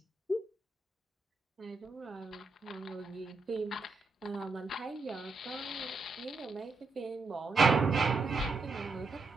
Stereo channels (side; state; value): left; quieter; 3.9 dB